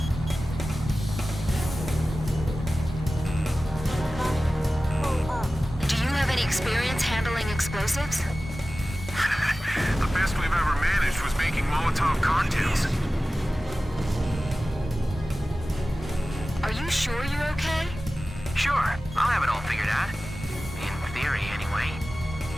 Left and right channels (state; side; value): normal; both; correlation 0.96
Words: Pull up. Do you have any experience handling explosives? The best we've ever managed was making Molotov cocktails. Are you sure you're okay? Sure, I'll have it all figured out. In theory, anyway.